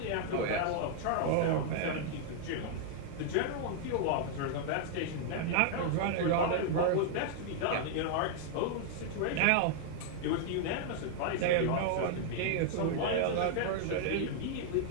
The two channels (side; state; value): both; different; correlation 0.00